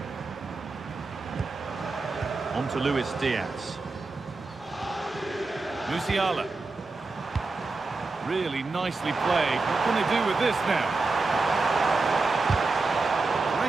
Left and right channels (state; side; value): quieter; left; 3.7 dB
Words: On to Luis Diaz. Musiala. Really nicely played. What can they do with this now?